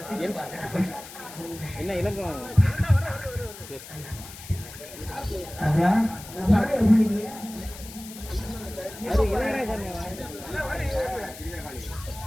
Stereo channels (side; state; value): left; noise; hiss, 15 dB below the sound